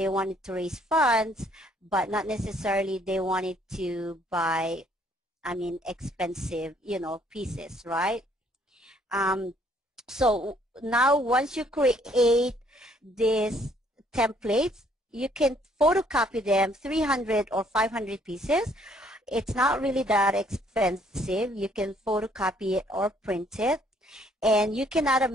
wanted to raise funds, but not necessarily they wanted to buy, I mean, expensive, you know, pieces, right? So now once you create these templates, you can photocopy them, 300 or 500 pieces. It's not really that expensive. You can photocopy it or print it. And you can add a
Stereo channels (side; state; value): both; normal; correlation 0.64